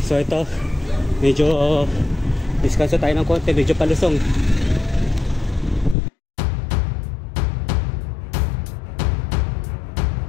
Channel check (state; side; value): drops out; right; at 6.0 s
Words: So ito, medyo diskanso tayo ng konti, medyo palusong.